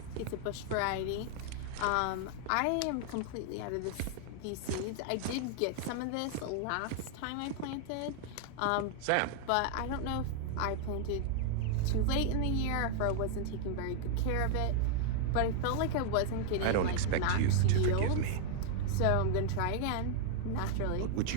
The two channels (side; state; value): both; different; correlation 0.00